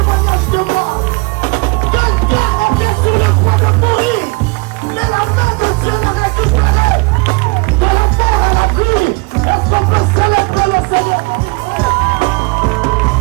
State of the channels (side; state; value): left; quieter; 27.7 dB